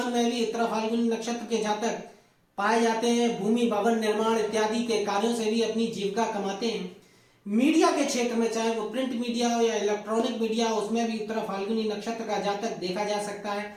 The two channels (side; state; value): both; identical; correlation 1.00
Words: में भी उत्तरा फाल्गुनी नक्षत्र के जातक पाए जाते हैं। भूमि भवन निर्माण इत्यादि के कार्यों से भी अपनी जीविका कमाते हैं। मीडिया के क्षेत्र में, चाहे वो प्रिंट मीडिया हो या इलेक्ट्रॉनिक मीडिया हो, उसमें भी उत्तरा फाल्गुनी नक्षत्र का जातक देखा जा सकता है।